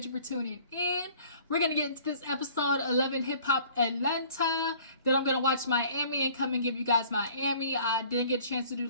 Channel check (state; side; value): inverted; both; correlation -0.52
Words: you for tuning in. We're going to get into this episode 11 Hip Hop Atlanta. Then I'm going to watch Miami and come and give you guys Miami. I didn't get a chance to do